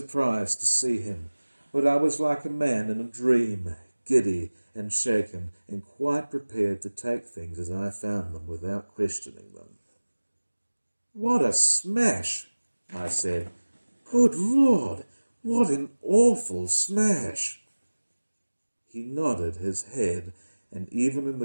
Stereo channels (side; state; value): both; inverted; correlation -1.00